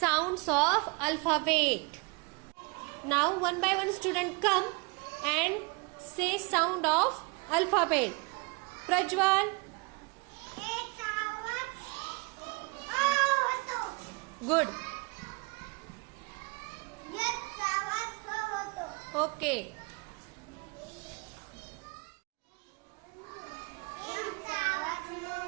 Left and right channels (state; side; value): quieter; left; 29.5 dB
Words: of alphabet. Now one by one student come and say sound of alphabet. Prajwal. Good. Okay.